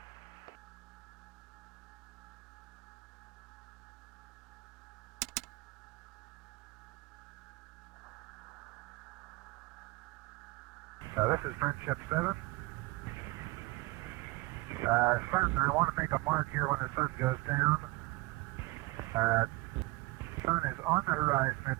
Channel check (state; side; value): quieter; left; 22.6 dB